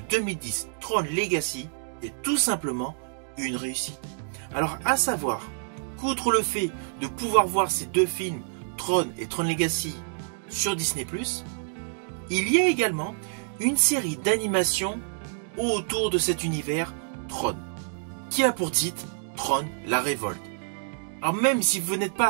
Tron Legacy, est tout simplement une réussite. Alors à savoir qu'outre le fait de pouvoir voir ces deux films, Tron et Tron Legacy, sur Disney+, il y a également une série d'animations autour de cet univers Tron, qui a pour titre Tron la Révolte. Alors même si vous n'êtes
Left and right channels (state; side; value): silent; left; digital silence